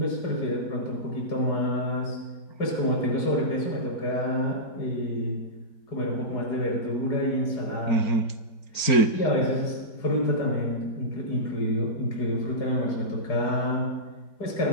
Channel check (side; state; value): right; late; 4.4 ms